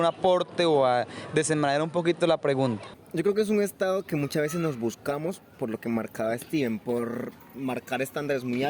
aporte o a desenmarañar un poquito la pregunta? Yo creo que es un estado que muchas veces nos buscamos, por lo que marcaba Steven, por marcar estándares muy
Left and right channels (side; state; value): both; identical; correlation 1.00